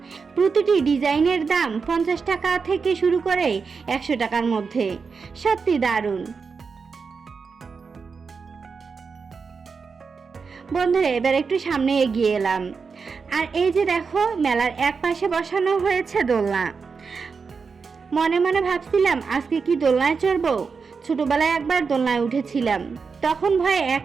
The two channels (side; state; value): left; quieter; 5.2 dB